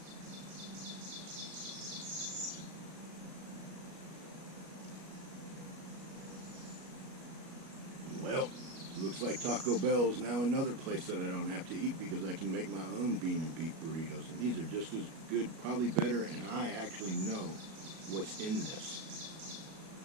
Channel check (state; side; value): late; left; 37 ms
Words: Well, looks like Taco Bell is now another place that I don't have to eat because I can make my own bean and beef burritos. And these are just as good, probably better, and I actually know what's in this.